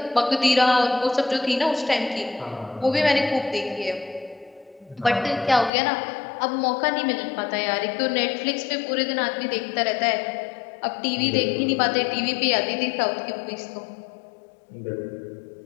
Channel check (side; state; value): right; drops out; at 5.7 s